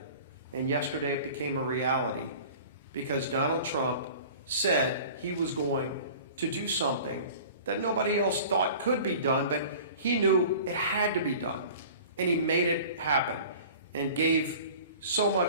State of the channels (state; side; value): inverted; both; correlation -0.42